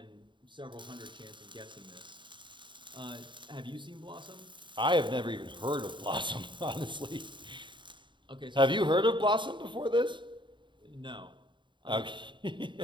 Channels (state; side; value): late; left; 0.23 ms